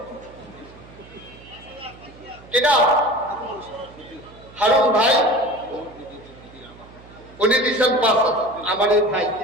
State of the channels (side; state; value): right; noise; hum, 21 dB below the sound